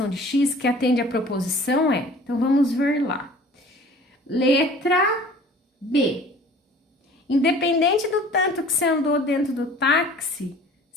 de X, que atende à proposição, é... Então, vamos ver lá. Letra B. Independente do tanto que você andou dentro do táxi,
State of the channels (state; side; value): normal; both; correlation 0.48